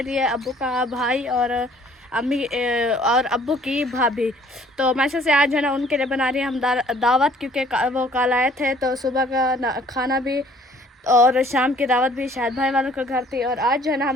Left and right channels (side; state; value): both; normal; correlation 0.57